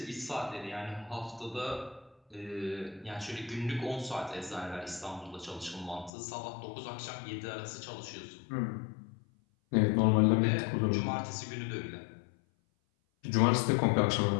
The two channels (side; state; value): right; drops out; at 6.1 s